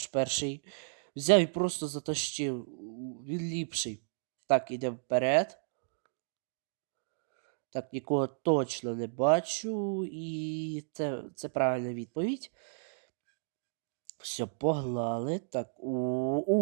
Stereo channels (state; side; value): silent; left; digital silence